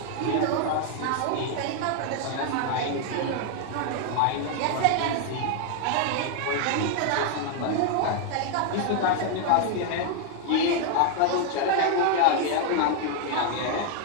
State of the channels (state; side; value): different; both; correlation 0.00